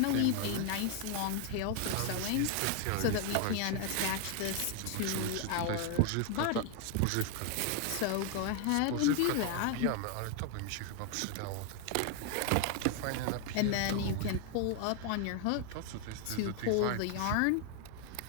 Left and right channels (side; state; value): both; different; correlation 0.01